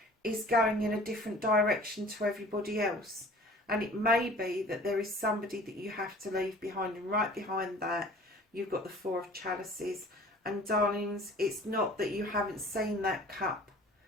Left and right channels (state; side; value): normal; both; correlation 0.47